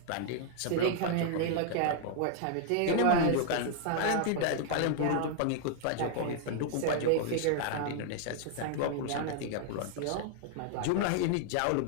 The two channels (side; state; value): both; different; correlation 0.00